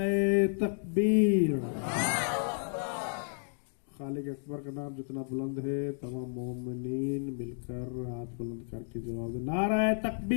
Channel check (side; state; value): right; silent; digital silence